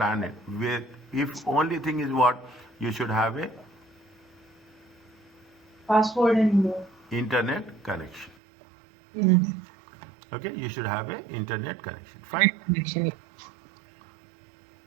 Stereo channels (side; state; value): left; drops out; at 8.3 s